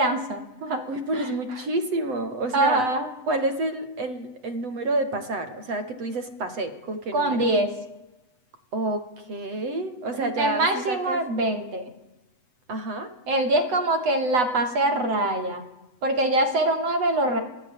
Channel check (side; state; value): left; late; 8.0 ms